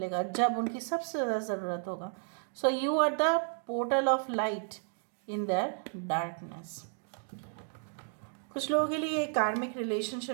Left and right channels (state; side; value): silent; left; 56 dB below the other